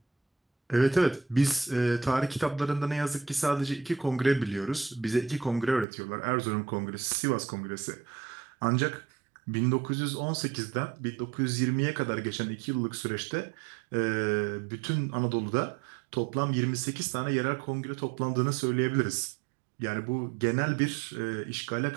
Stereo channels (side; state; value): left; drops out; at 5.9 s